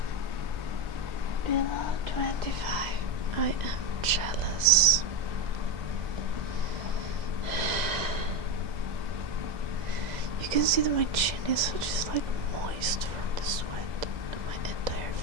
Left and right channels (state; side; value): late; left; 2.0 ms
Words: Below 25. I am jealous. You You can see that my chin is just like moist from the sweat in my entire